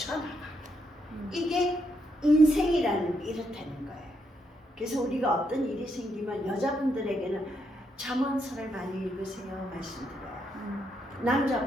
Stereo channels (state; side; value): normal; both; correlation 0.78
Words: 이게 인생이라는 게 이렇다는 거예요. 그래서 우리가 어떤 일이 생기면 여자분들에게는 잠언서를 많이 읽으세요 말씀드려요.